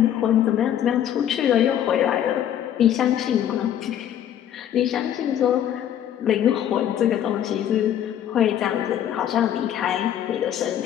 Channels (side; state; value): right; quieter; 10.4 dB